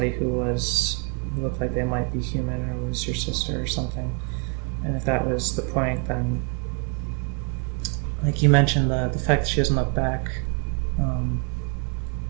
who looked like they might be human or was your sister or something, and if that was the point, then you mentioned the fact that she doesn't look back,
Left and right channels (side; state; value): left; quieter; 33.4 dB